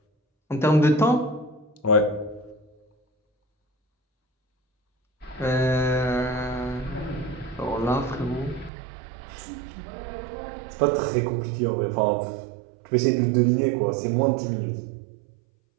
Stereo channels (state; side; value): drops out; left; at 8.7 s